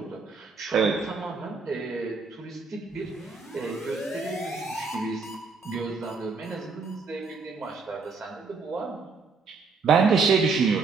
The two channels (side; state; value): left; quieter; 4.7 dB